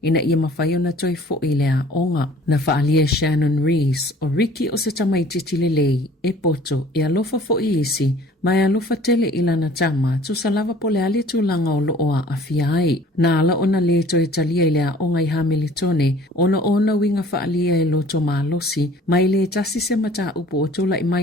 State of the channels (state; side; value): normal; both; correlation 0.51